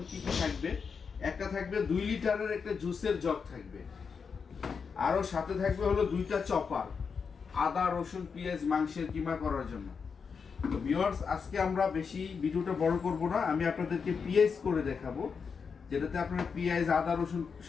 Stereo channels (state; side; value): quieter; right; 5.8 dB